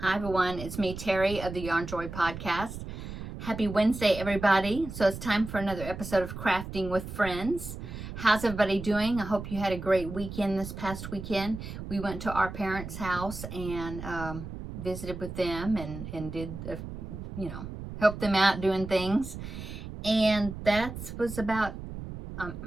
Hi everyone, it's me, Terri of the Yarn Joy podcast. Happy Wednesday, everybody. So it's time for another episode of Crafting with Friends. How's everybody doing? I hope you had a great weekend this past weekend. We went to our parents' house and visited with them and did, helped them out doing things. And that was about,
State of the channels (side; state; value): right; noise; rumble, 9 dB below the sound